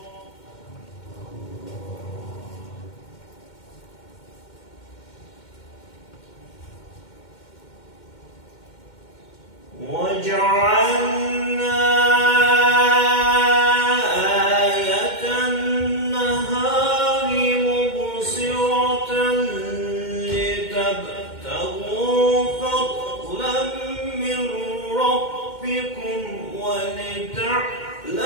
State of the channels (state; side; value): late; right; 2.1 ms